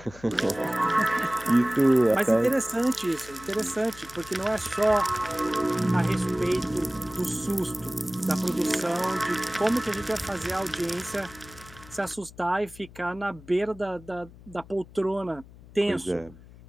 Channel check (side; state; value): left; noise; hum, 20 dB below the sound